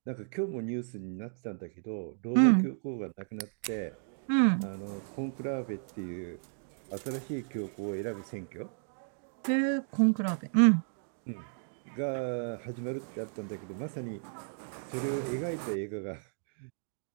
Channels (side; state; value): left; silent; digital silence